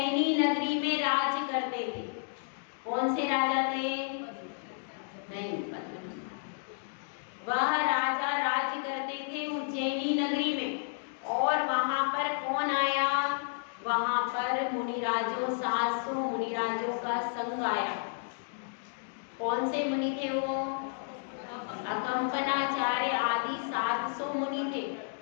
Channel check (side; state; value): right; silent; digital silence